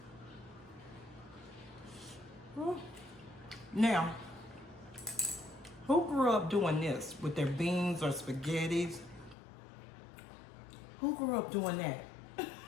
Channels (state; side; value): drops out; right; at 9.3 s